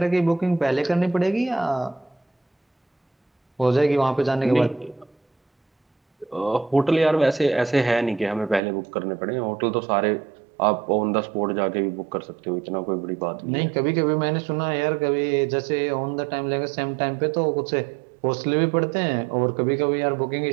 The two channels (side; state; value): left; drops out; at 8.6 s